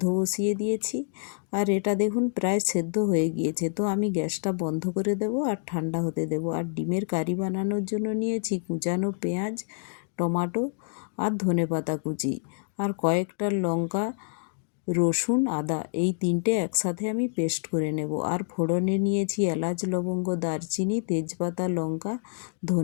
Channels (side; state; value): right; silent; digital silence